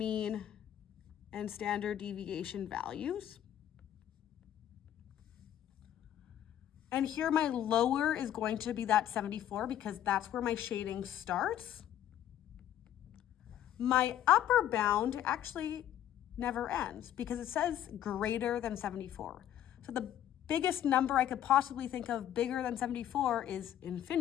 and standard deviation values. And here my lower is going to be that 74 because that's where my shading starts. My upper bound actually never ends because it says greater than 74. So the biggest number I could possibly think of bigger than 74 is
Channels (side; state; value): right; quieter; 11.3 dB